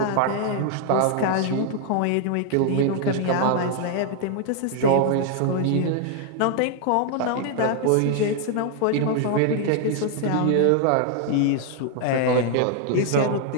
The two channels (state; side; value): different; both; correlation 0.00